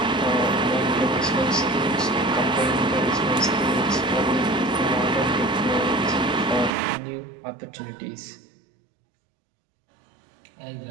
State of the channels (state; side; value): drops out; left; at 6.7 s